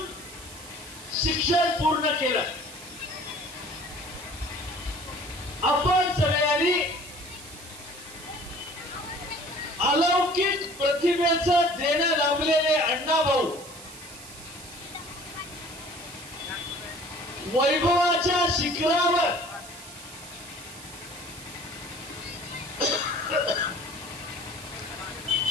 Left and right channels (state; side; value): noise; right; hiss, 16 dB below the sound